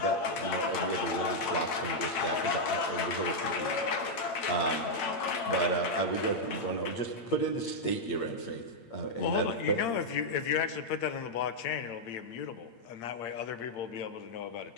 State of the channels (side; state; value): right; late; 8.7 ms